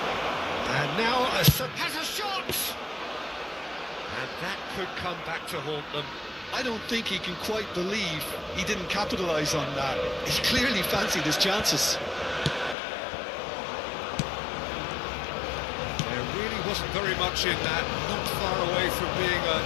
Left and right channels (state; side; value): drops out; right; at 12.8 s